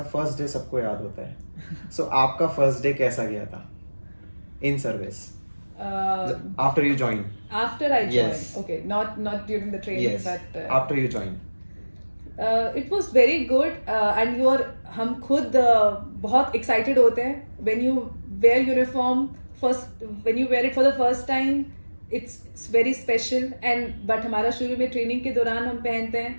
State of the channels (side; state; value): both; inverted; correlation -1.00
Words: फर्स्ट डे सबको याद होता है। So आपका फर्स्ट डे कैसा गया था in service? After you joined. After I joined. Yes. Okay, not during the training, yes. but after you joined. It was very good, and हम खुद बहुत excited होते हैं when you wear uniform first, when you wear it for the first time, it's very special, and but हमारा शुरू में training के दौरान हम पहनते हैं,